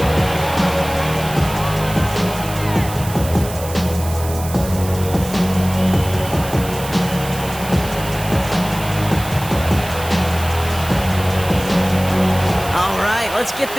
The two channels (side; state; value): right; noise; hiss, 12 dB below the sound